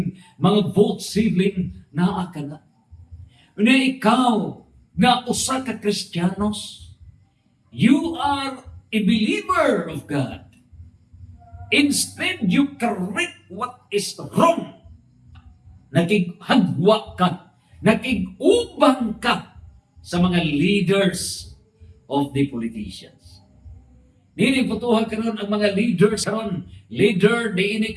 mga vote stealing, naa ka na. Una ikaw, nga usa ka Kristiyanos, you are a believer of God. Instead, you correct what is wrong. Nakig-hagwa ka, nakig-ubang ka sa mga leaders of the politicians. Nini putuhan karon ang mga leaders karon, leader di ini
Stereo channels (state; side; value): identical; both; correlation 1.00